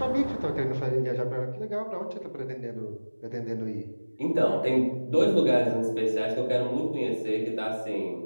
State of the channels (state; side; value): inverted; both; correlation -1.00